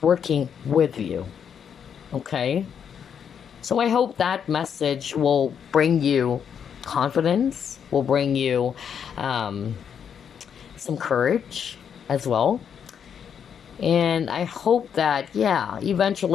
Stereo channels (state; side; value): quieter; right; 7.8 dB